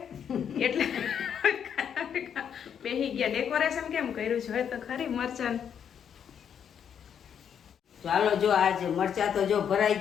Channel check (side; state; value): right; quieter; 8.2 dB